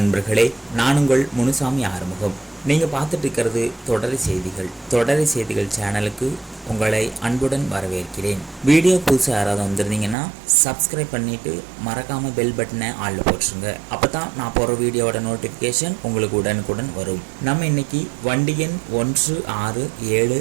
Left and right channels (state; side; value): drops out; left; at 10.2 s